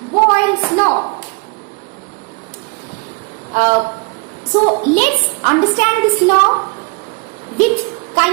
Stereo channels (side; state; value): left; quieter; 31.7 dB